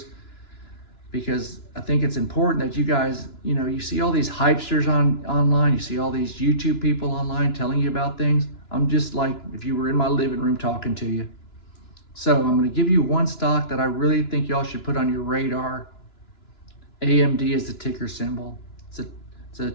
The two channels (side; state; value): right; late; 2.9 ms